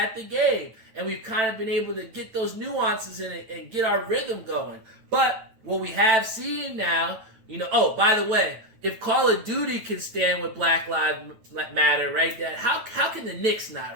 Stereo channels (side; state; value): left; late; 9.1 ms